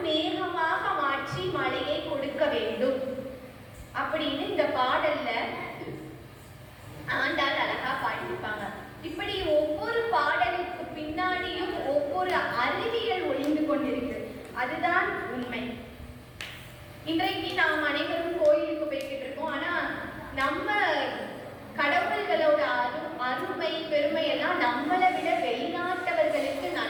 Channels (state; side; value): identical; both; correlation 1.00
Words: மேகமாக மாற்றி மழையை கொடுக்க வேண்டும் அப்படின்னு இந்த பாடல்ல ஆண்டாள் அழகா பாடியிருப்பாங்க. இப்படி ஒவ்வொரு பாடலுக்கு பின்னாடியும் ஒவ்வொரு அறிவியல் ஒளிந்து கொண்டிருக்கு. அதுதான் உண்மை. இன்றைக்கு நாம் அனைவரும் கோயிலுக்கு போய்கிட்டு இருக்கோம். ஆனா நம்ம கடவுள்களோட அருமை பெருமை எல்லாம் நம்மளை விட வெளிநாட்டவர்களுக்கு